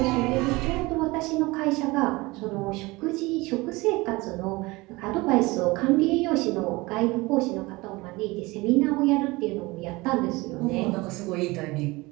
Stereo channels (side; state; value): left; quieter; 22.5 dB